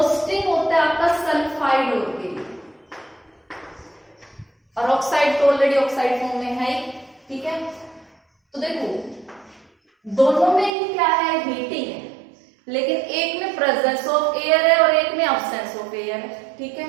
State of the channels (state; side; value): drops out; left; at 10.7 s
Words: होता है आपका सल्फाइड और के लिए, और ऑक्साइड तो ऑलरेडी ऑक्साइड फॉर्म में है, ठीक है। तो देखो दोनों में ही क्या है, हीटिंग है, लेकिन एक में प्रेजेंस ऑफ एयर है और एक में अब्सेंस ऑफ एयर है, ठीक है।